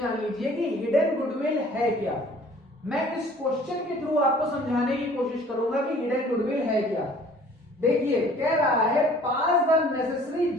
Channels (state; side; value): normal; both; correlation 0.52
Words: लीजिए कि हिडन गुडविल है क्या। मैं इस क्वेश्चन के थ्रू आपको समझाने की कोशिश करूंगा कि हिडन गुडविल है क्या। देखिए, कह रहा है pass the necessary